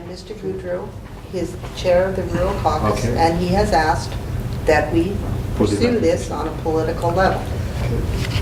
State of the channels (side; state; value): both; identical; correlation 1.00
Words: Mr. Goudreau is chair of the Rural Caucus, Okay. and he has asked that we Put it pursue back. this on a political level.